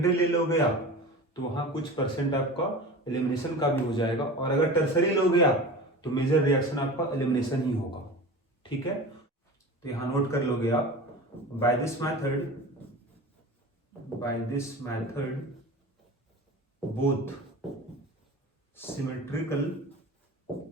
ले लोगे आप तो वहाँ कुछ % आपका एलिमिनेशन का भी हो जाएगा, और अगर टर्सरी लोगे आप तो मेजर रिएक्शन आपका एलिमिनेशन ही होगा, ठीक है। तो यहाँ नोट कर लोगे आप, by this method both symmetrical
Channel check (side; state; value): both; normal; correlation 0.34